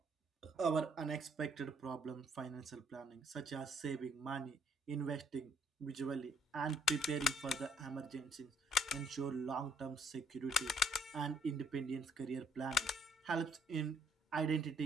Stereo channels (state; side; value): normal; both; correlation 0.66